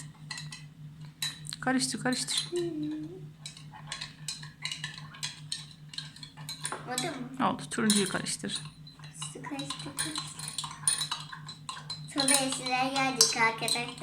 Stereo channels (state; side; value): identical; both; correlation 1.00